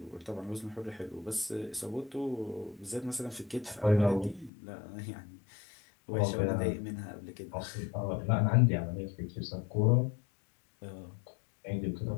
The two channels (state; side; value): drops out; right; at 4.5 s